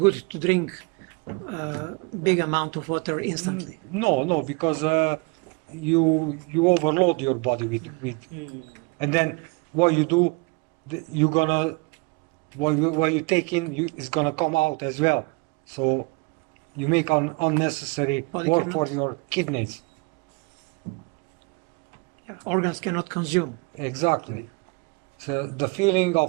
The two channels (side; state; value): left; quieter; 28.2 dB